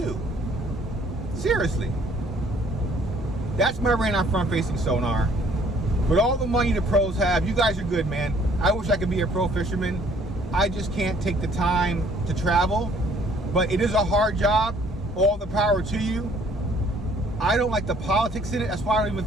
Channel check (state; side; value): normal; both; correlation 0.60